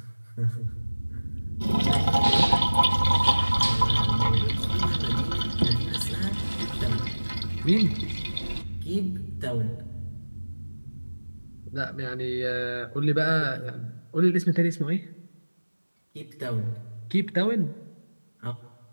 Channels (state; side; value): inverted; both; correlation -1.00